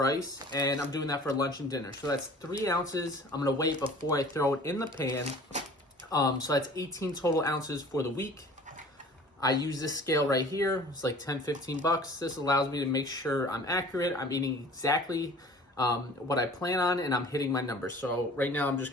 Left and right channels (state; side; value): normal; both; correlation 0.46